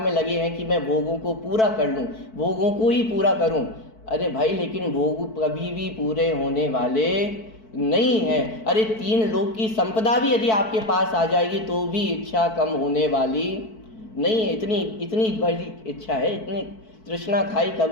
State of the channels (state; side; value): late; right; 4.6 ms